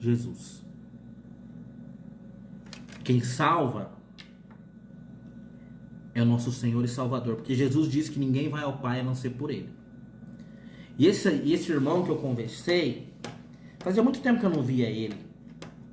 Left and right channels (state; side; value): identical; both; correlation 1.00